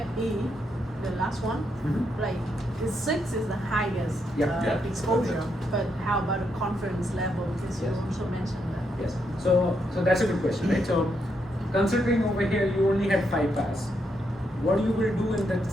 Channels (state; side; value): normal; both; correlation 0.79